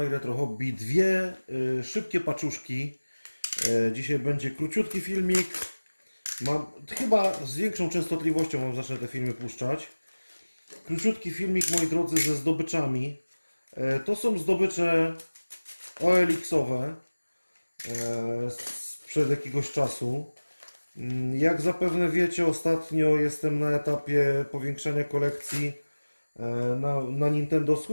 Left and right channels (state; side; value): inverted; both; correlation -1.00